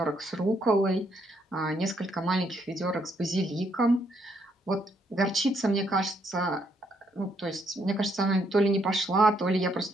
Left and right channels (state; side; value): normal; both; correlation 0.73